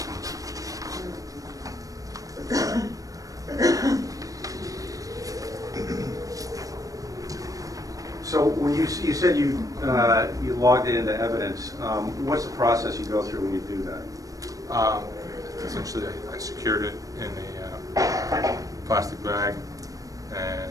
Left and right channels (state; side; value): late; left; 0.17 ms